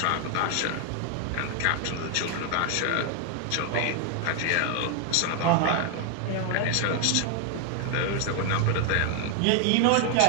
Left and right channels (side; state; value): both; different; correlation 0.01